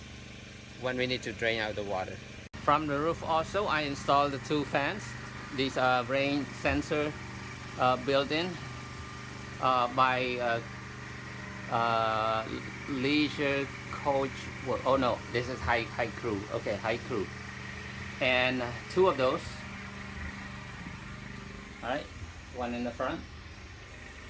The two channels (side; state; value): both; identical; correlation 1.00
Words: when we need to drain out the water. From the roof also, I installed the 2 fans. These are rain sensor built-in by Leisure Coach. Oh no, this is High Crew. Okay, High Crew, and 2 of those. All right, one in the front,